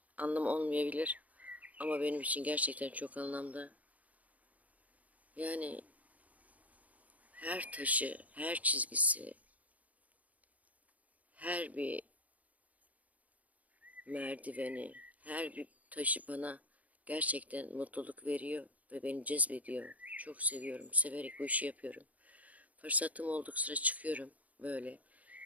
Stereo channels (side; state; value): left; late; 0.073 ms